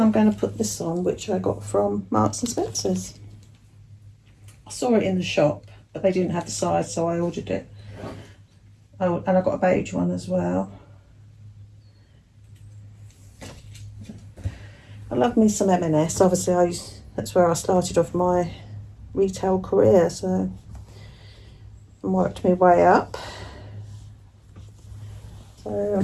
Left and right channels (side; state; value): both; identical; correlation 1.00